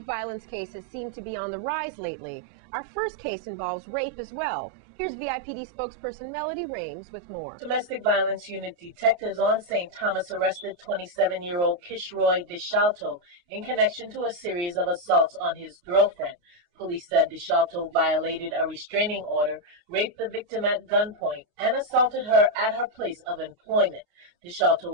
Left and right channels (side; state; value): left; late; 29 ms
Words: violence cases seem to be on the rise lately. Our first case involves rape as well. Here's VIPD spokesperson Melody Rames with more. Domestic violence unit detectives on St. Thomas arrested 27-year-old Kishroy DeShalto in connection to a series of assaults on his girlfriend. Police said DeShalto violated a restraining order, raped the victim at gunpoint, and assaulted her at her place of employment. DeShalto